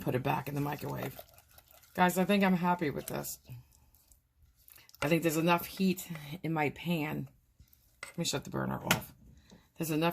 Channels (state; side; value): identical; both; correlation 1.00